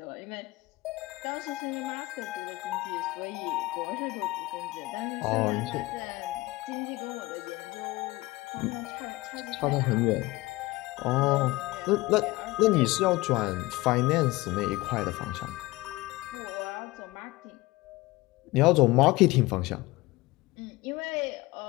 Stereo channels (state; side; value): quieter; right; 20.5 dB